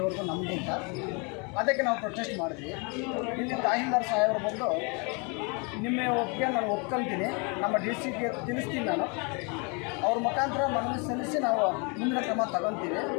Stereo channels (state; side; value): quieter; right; 32.8 dB